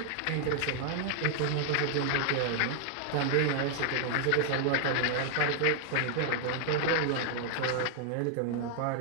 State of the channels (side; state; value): both; different; correlation -0.01